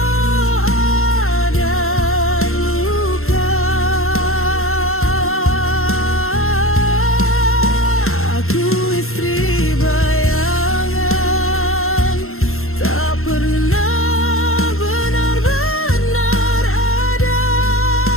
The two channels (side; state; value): right; late; 0.62 ms